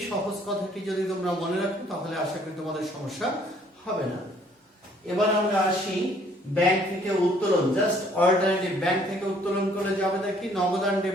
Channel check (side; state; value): both; normal; correlation 0.61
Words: সহজ কথাটি যদি তোমরা মনে রাখো তাহলে আশা করি তোমাদের সমস্যা হবে না। এবার আমরা আসি ব্যাংক থেকে উত্তোলন, জাস্ট অল্টারনেটিভ, ব্যাংক থেকে উত্তোলন করে যাবে দেখি নগদ আর